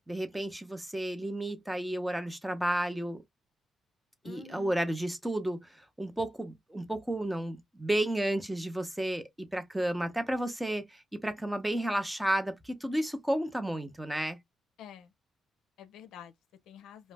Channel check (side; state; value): both; normal; correlation 0.95